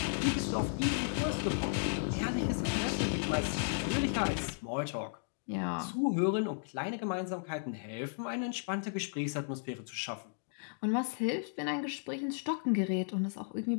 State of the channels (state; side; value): silent; right; digital silence